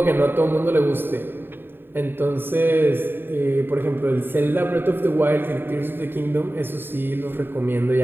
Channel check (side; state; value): left; late; 0.099 ms